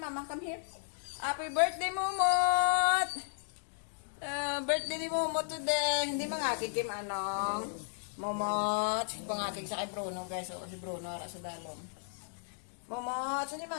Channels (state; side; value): silent; right; digital silence